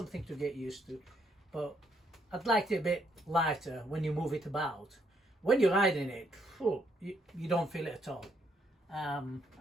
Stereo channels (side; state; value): both; normal; correlation 0.73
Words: to get used to. But I'd like it a bit lighter when you move it about. When you're riding it, you don't feel it at all. I